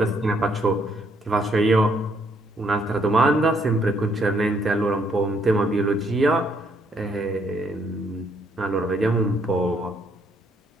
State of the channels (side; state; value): both; normal; correlation 0.70